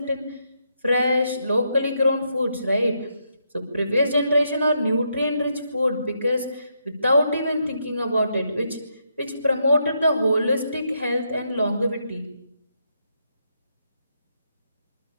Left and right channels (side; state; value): both; inverted; correlation -0.79